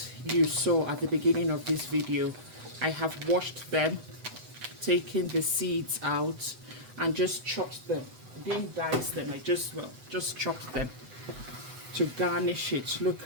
you saw at the beginning of this video. I have washed them, taken the seeds out, and just chopped them. Didn't dice them, I just chopped them to garnish it.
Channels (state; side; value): late; left; 7.9 ms